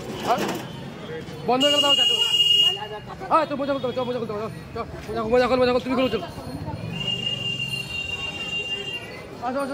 বন্ধ করে দাও। হ্যাঁ তো মোজা খুলতে হবে, মোজা খুলতে হবে, মোজা খোল তুমি খুলো চলো। আসো আসো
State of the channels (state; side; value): identical; both; correlation 1.00